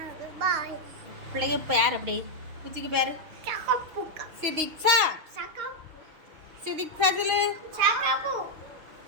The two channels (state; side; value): late; left; 6.4 ms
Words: பிள்ளைங்க பேர் அப்படி பூச்சிக்கு பேர் சிதிக்ஷா. சிதிக்ஷா சொல்லு.